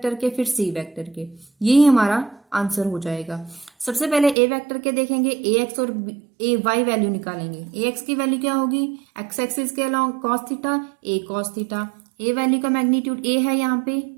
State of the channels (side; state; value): left; drops out; at 4.4 s